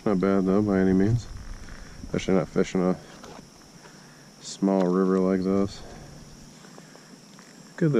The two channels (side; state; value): both; identical; correlation 1.00